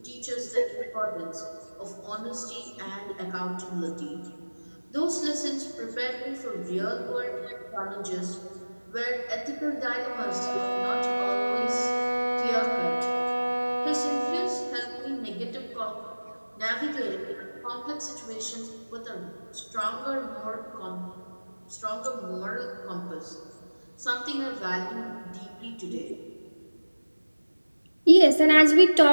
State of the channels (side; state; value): both; inverted; correlation -1.00